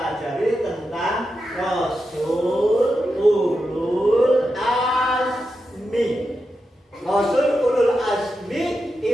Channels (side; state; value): both; normal; correlation 0.88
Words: tentang Rasul Ulul Azmi. Rasul Ulul Azmi